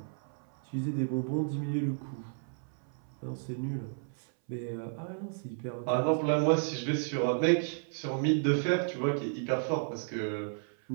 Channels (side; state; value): left; silent; 55 dB below the other